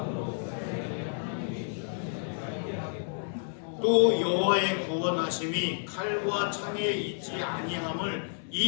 또 여호와의 구원하심이 칼과 창에 있지 아니함을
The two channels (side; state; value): right; silent; digital silence